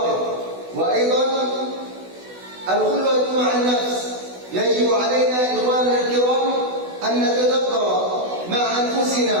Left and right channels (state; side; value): late; left; 16 ms